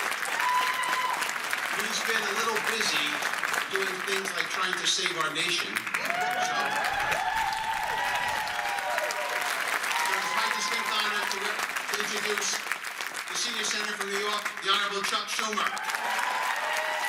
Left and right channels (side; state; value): both; identical; correlation 1.00